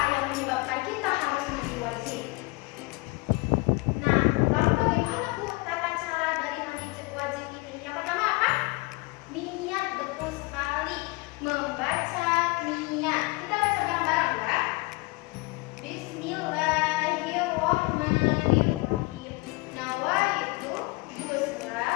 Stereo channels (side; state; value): right; quieter; 24.9 dB